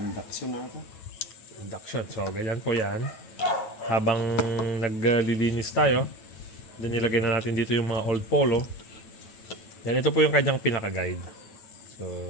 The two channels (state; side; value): late; right; 9.2 ms